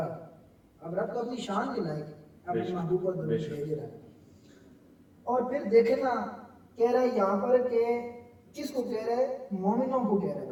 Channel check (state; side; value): identical; both; correlation 1.00